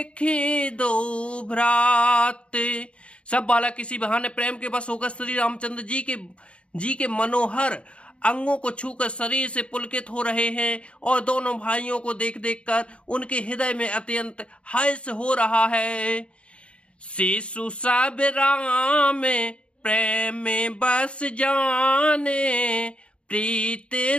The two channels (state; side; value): late; right; 0.059 ms